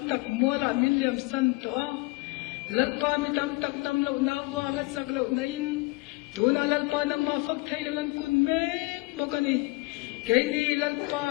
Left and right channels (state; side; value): quieter; right; 24.7 dB